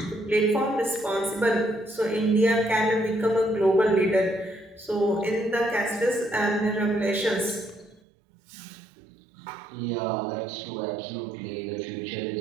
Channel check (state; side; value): drops out; left; at 8.0 s